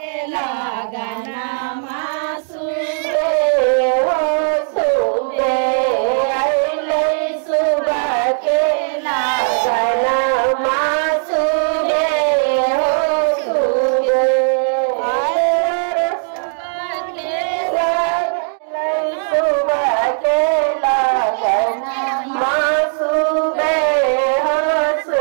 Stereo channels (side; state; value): left; silent; digital silence